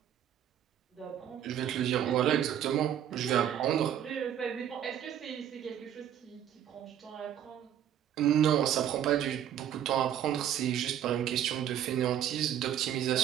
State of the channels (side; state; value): left; quieter; 10.2 dB